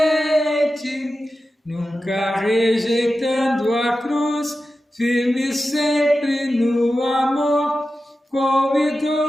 nunca rejeitando a cruz, firme sempre no amor, com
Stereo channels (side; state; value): both; normal; correlation 0.93